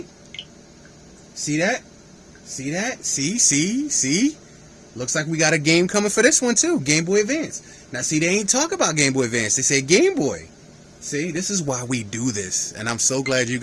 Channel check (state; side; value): identical; both; correlation 1.00